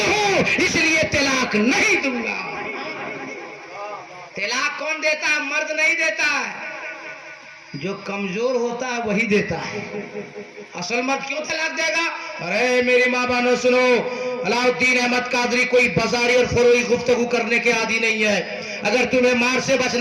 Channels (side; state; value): both; identical; correlation 1.00